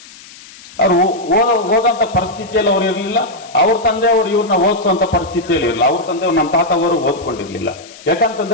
ಅವ್ರು ಓದಂತ ಪರಿಸ್ಥಿತಿಯಲ್ಲಿ ಅವ್ರು ಇರಲಿಲ್ಲ. ಅವ್ರ ತಂದೆ ಅವರು ಇವ್ರನ್ನ ಓದಿಸುವಂತ ಪರಿಸ್ಥಿತಿಯಲ್ಲಿ ಇರಲಿಲ್ಲ. ಅವ್ರ ತಂದೆ ನಮ್ಮ ತಾತ ಅವರು ಓದ್ಕೊಂಡಿರ್ಲಿಲ್ಲ.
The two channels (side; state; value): left; noise; hiss, 20 dB below the sound